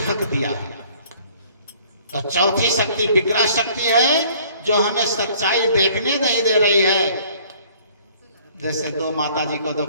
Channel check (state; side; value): inverted; both; correlation -0.56